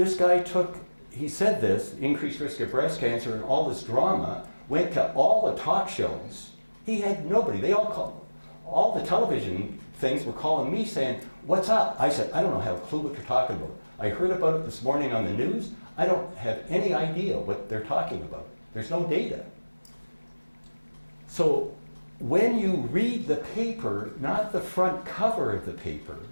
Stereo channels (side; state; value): both; inverted; correlation -1.00